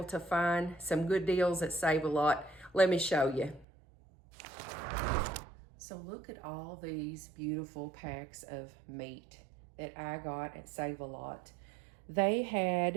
to find some good deals that save a lot. Let me show you. So look at all these beautiful packs of meat that I got at Save a Lot. They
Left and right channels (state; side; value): drops out; left; at 3.7 s